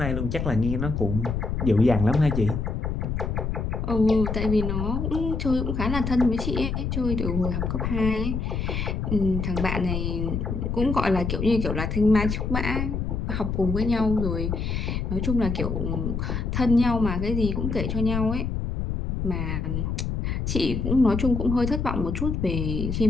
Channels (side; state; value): left; noise; rumble, 2 dB below the sound